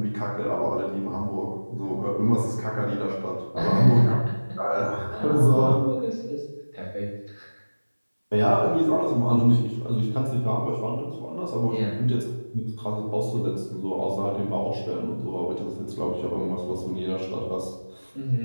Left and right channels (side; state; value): both; inverted; correlation -1.00